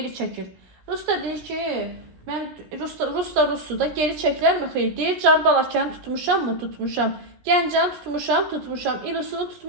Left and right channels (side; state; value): left; late; 17 ms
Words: çəkir. Rus da deyir ki, mən Rus da geri çəkilərmi? Xeyr, deyir, Carbalakanı tutmuşam mı? Tutmuşam. Gəncəni tutmuşam. İlusunu